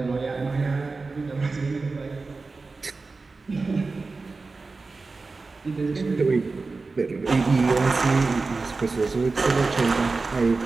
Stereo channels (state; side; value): quieter; left; 3.9 dB